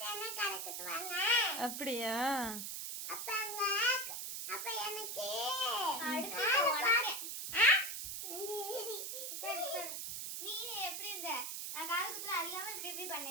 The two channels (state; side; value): noise; right; hiss, 5 dB below the sound